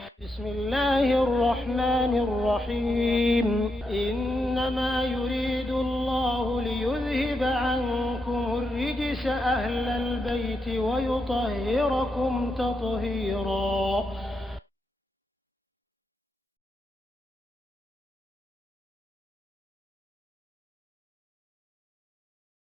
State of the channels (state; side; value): normal; both; correlation 0.84